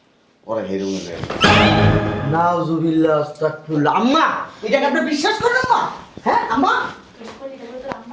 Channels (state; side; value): identical; both; correlation 1.00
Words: ওরা হেরুন রে নাউজুবিল্লাহ আস্তাগফিরুল্লাহ আম্মা এটা কি আপনি বিশ্বাস করেন আম্মা হ্যাঁ আম্মা